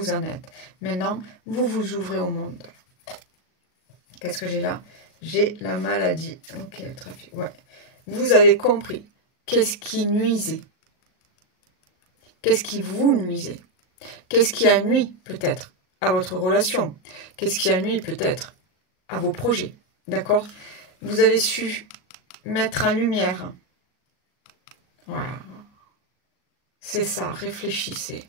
en êtes. Maintenant, vous vous ouvrez au monde. Qu'est-ce que j'ai là? J'ai la maladie. Ok, le trafic. Ouais. Vous avez compris. Qu'est-ce qui nuisait? Qu'est-ce qui vous nuisait? Qu'est-ce qui a nui peut-être à votre relation? Qu'est-ce qui a nui peut-être à vos projets? D'accord? Vous avez su mettre en lumière. Voilà. C'est ça, réfléchissez.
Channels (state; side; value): late; right; 38 ms